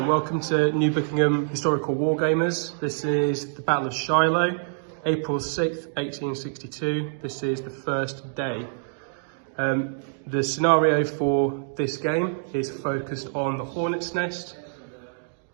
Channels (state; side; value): silent; left; digital silence